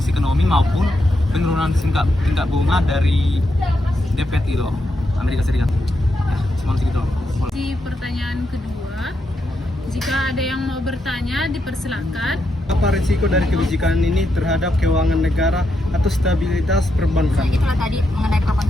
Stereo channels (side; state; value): both; normal; correlation 0.82